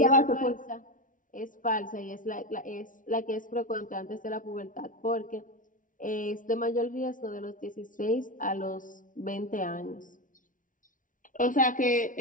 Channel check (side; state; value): right; late; 0.38 ms